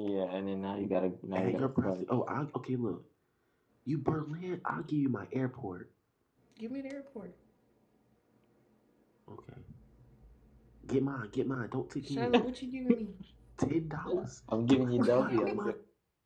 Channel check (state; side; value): identical; both; correlation 1.00